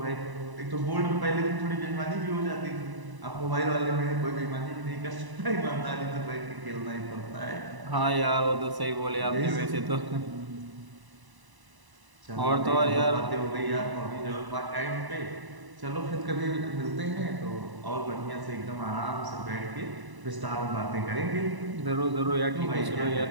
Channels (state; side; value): late; left; 1.0 ms